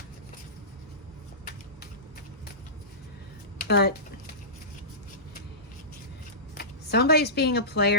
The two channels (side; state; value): both; normal; correlation -0.20